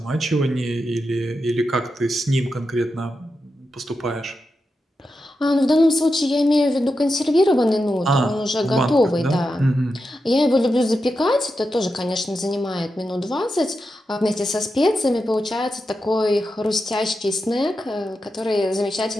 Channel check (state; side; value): normal; both; correlation 0.89